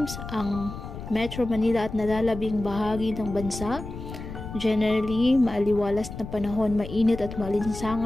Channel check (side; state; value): left; noise; rumble, 10 dB below the sound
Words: ang Metro Manila at nalalabing bahagi ng bansa. Generally, maaliwalas na panahon, mainit at